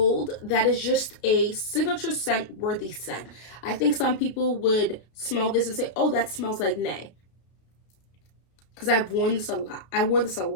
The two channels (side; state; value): right; late; 32 ms